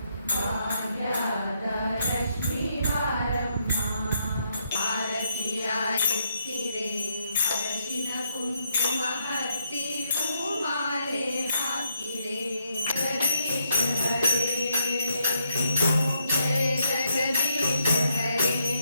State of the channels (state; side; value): inverted; both; correlation -0.76